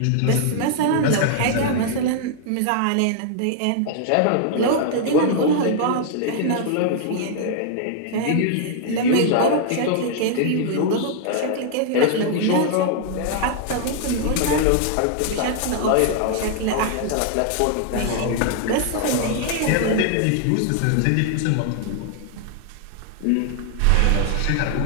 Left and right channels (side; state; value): both; different; correlation 0.00